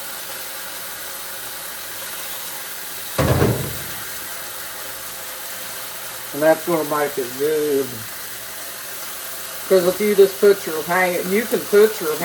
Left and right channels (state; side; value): identical; both; correlation 1.00